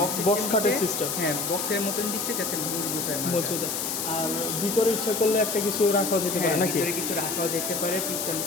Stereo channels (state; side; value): noise; left; hiss, 2 dB below the sound